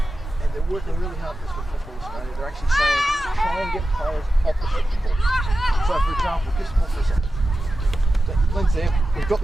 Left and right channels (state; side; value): normal; both; correlation 0.93